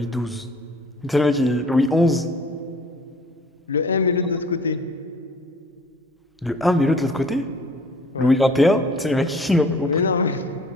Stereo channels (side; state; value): both; normal; correlation 0.51